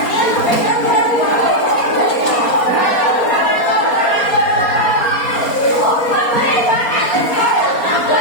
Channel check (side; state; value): right; late; 4.3 ms